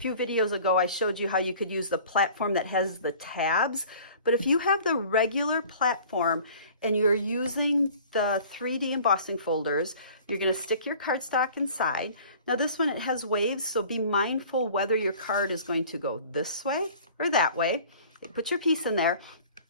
videos ago I showed you how you could use the platform that has the tabs. But if you have the regular platform and you're using the 3D embossing folders, you're going to stick your cardstock inside. Now this one, it has waves, so be mindful whether your card is going to go this way or that way. Put your piece in there,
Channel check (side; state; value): both; inverted; correlation -0.48